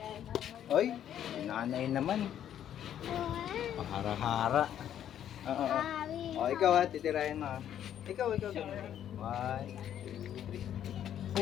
Oy, nanay naman. Pahara-hara. Oo. O, ikaw ha, titirahin mo ha. Ikaw. 1, 2, 3.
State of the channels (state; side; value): quieter; right; 10.3 dB